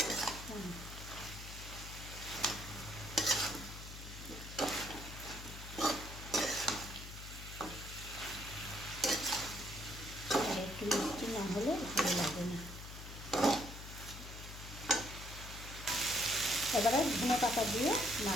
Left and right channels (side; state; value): left; noise; hum, 11 dB below the sound